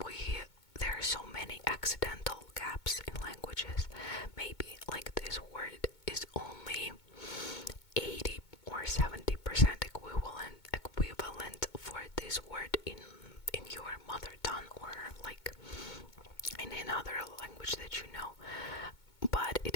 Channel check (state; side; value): late; right; 2.2 ms